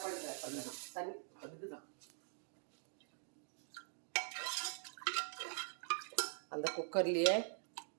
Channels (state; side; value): silent; left; digital silence